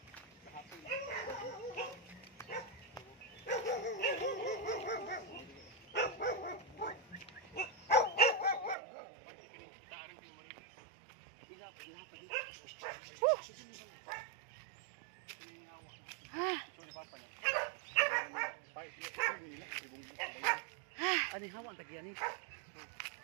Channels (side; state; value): left; drops out; at 8.8 s